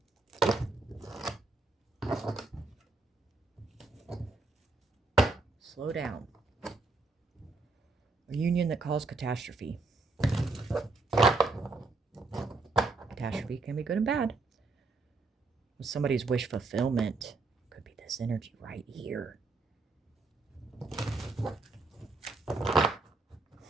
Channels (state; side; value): quieter; left; 3.6 dB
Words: Slow down. A union that caused catastrophe. Catastrophe can be good and bad. Somebody's wish fulfillment could be this energy right here.